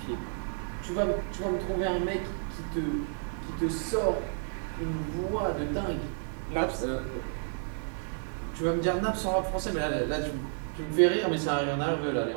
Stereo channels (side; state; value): left; silent; digital silence